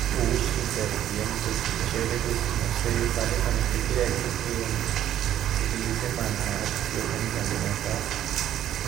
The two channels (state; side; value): quieter; left; 11.5 dB